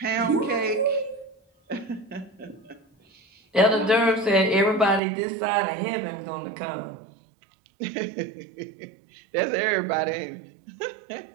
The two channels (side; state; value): left; drops out; at 5.0 s